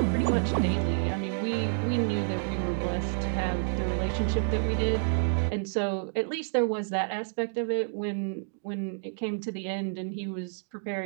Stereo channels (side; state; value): left; silent; digital silence